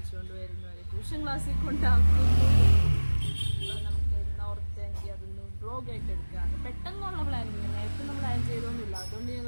വരുന്നു, അവരെ ട്യൂഷൻ ക്ലാസ്സിൽ കൊണ്ടാക്കുന്നു. നമുക്ക് ഓർത്തെങ്കിൽ അതൊന്ന് വ്ളോഗായിട്ട് എടുക്കുകയാണ്. പെട്ടെന്നുള്ള പ്ലാനിങ്, നേരത്തെ നമ്മൾ പ്ലാൻ ചെയ്തൊന്നുമില്ല. അതുകൊണ്ട്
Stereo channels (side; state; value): both; inverted; correlation -1.00